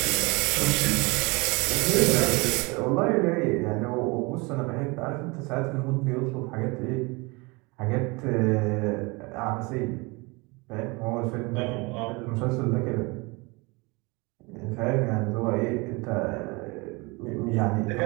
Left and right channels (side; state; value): left; quieter; 26.6 dB